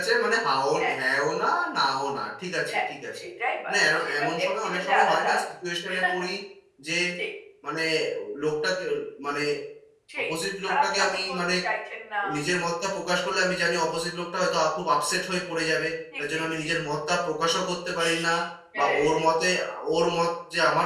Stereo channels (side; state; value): both; identical; correlation 1.00